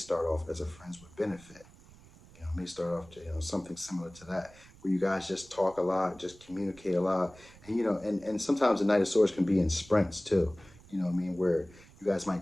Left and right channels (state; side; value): noise; right; rumble, 23 dB below the sound